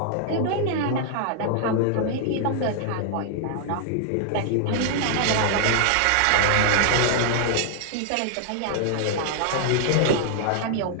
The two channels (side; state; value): both; different; correlation -0.01